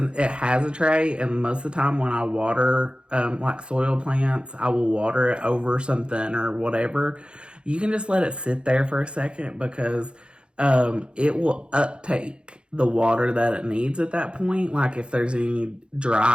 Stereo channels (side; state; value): left; late; 0.055 ms